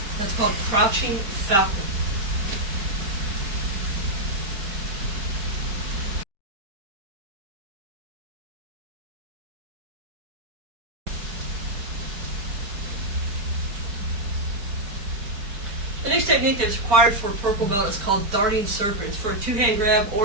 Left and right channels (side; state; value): left; late; 5.1 ms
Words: That's called crouching falcon. next technique that's required for a purple belt is called darting serpent. It's for a two-hand grab